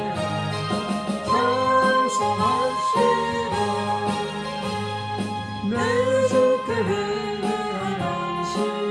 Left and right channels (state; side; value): identical; both; correlation 1.00